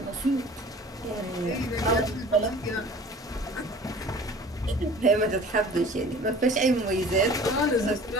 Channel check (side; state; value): both; normal; correlation 0.45